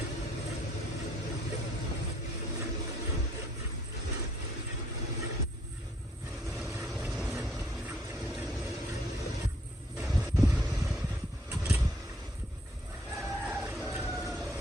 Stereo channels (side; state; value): both; normal; correlation 0.66